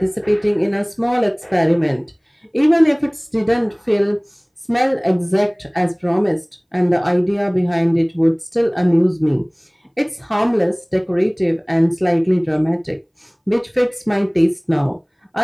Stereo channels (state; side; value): identical; both; correlation 1.00